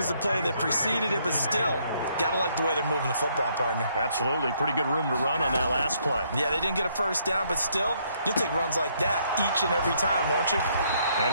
the play that preceded it, but still, got to like the way they're moving the football, partner. Absolutely. Pretty good room to run on that last play. Yeah, they didn't get a first down, but still, you'll take runs like that each and every time, won't you? And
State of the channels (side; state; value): both; inverted; correlation -0.70